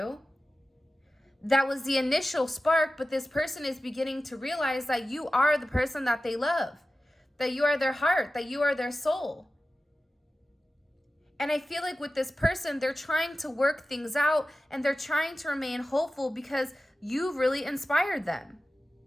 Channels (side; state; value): both; normal; correlation 0.94